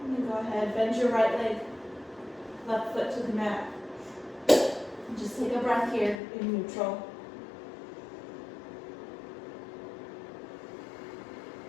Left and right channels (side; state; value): right; drops out; at 6.2 s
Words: And then go ahead, bend your right leg, left foot to the mat. And just take a breath here in neutral.